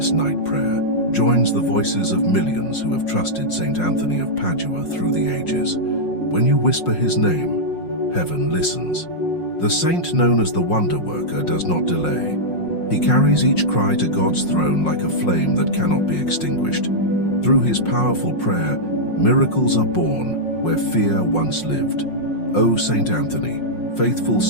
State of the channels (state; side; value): late; right; 5.5 ms